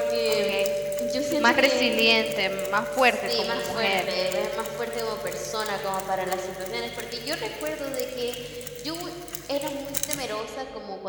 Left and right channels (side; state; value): both; identical; correlation 1.00